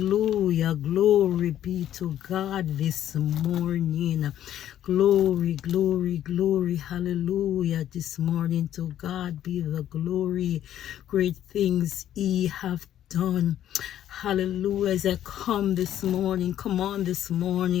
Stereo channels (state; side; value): quieter; right; 11.4 dB